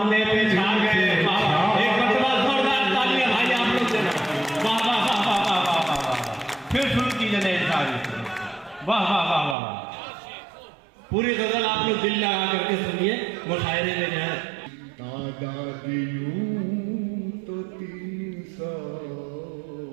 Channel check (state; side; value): drops out; left; at 9.6 s